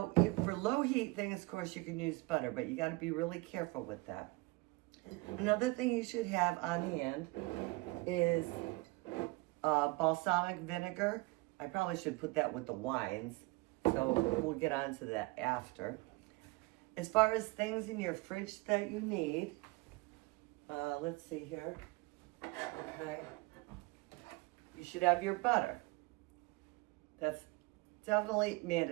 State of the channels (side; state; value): left; quieter; 23.9 dB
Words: for low heat things, of course, you can use butter, but you got to be really careful with that. Another thing you should have on hand is balsamic vinegar. I probably should put that with the wines, so we'll get on to that after. As far as things in your fridge that you need, let's see here. Okay. You should have your butter. That's definitely